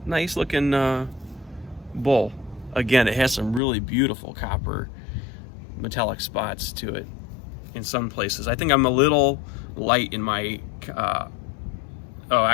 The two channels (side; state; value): right; drops out; at 3.6 s